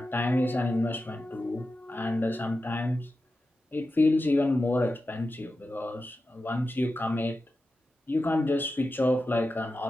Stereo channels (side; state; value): both; normal; correlation 0.91